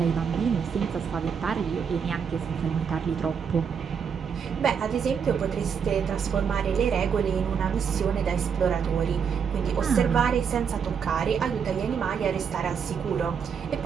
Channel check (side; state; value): left; quieter; 6.9 dB